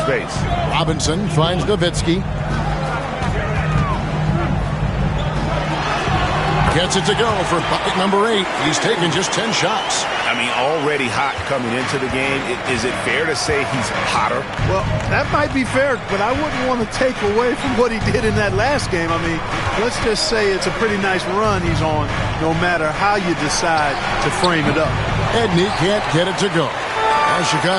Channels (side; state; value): both; identical; correlation 1.00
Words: Robinson finds Nowitzki. Gets it to go for bucket number 8. He's taken just 10 shots. I mean, already hot coming into the game. Is it fair to say he's hotter? Well, that might be fair, but I wouldn't want to take away from what he did in that last game. I mean, let's just say it's a pretty nice run he's on, no matter how you decide to frame it up. Edney can't get it to go. Well,